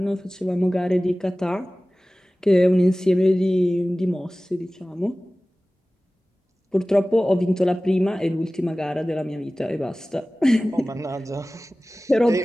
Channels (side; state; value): both; normal; correlation 0.97